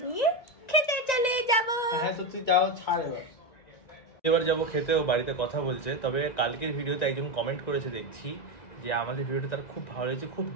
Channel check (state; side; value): late; right; 1.9 ms